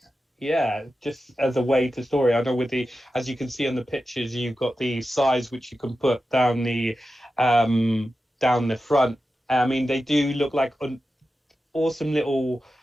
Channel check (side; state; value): both; normal; correlation 0.92